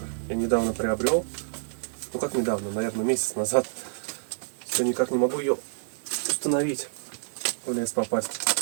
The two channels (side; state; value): left; silent; digital silence